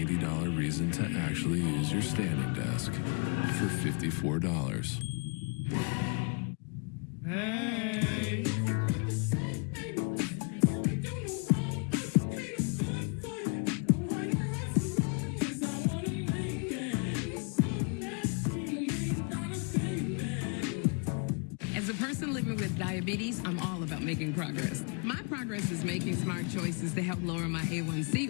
reason to actually use your standing desk for $54. Hey. As a person living with diabetes, I'm all about making progress. My progress is making smart choices to help lower my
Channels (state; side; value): quieter; right; 36.9 dB